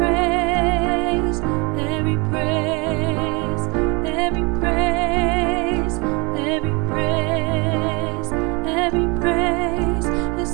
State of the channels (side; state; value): left; quieter; 28.9 dB